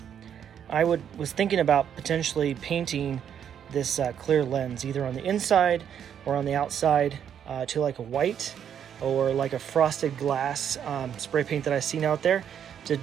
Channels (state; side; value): quieter; left; 8.8 dB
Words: I was thinking about potentially painting this clear lens either on the inside or on the outside to like a white or like a frosted glass spray paint that I've seen out there to